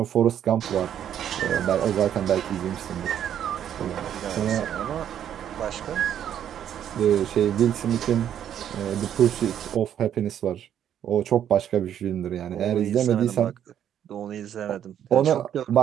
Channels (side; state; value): left; quieter; 9.9 dB